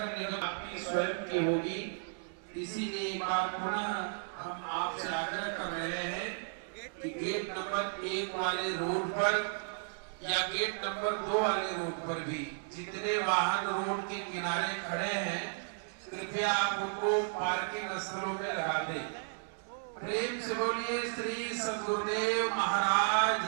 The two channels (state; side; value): silent; left; digital silence